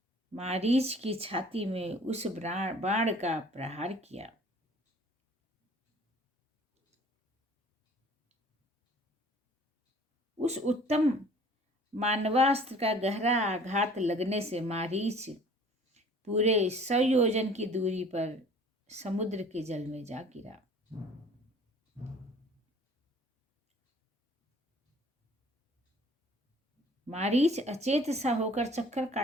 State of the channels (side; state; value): both; normal; correlation 0.51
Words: मारीच की छाती में उस बाण का प्रहार किया। उस उत्तम मानवास्त्र का गहरा आघात लगने से मारीच पूरे 100 योजन की दूरी पर समुद्र के जल में जा गिरा। मारीच अचेत सा होकर चक्कर